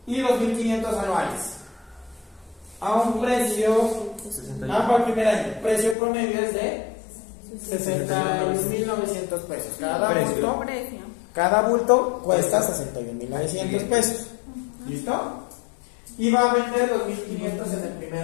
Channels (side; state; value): right; drops out; at 6.0 s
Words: y 2.500 anuales a un precio, 61. para el primer año, precio promedio es de 61.900 pesos. Precio. Precio. Cada bulto cuesta 61.900 pesos. ¿Listo? Y va a vender 2.500 en el primer